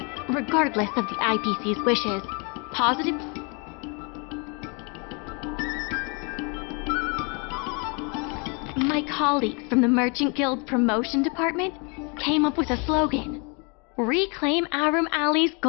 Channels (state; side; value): quieter; right; 33.5 dB